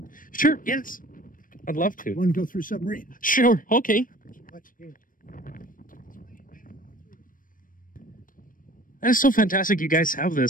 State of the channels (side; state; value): right; late; 0.40 ms